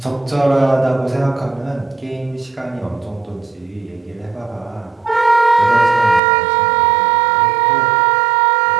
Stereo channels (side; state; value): left; drops out; at 6.2 s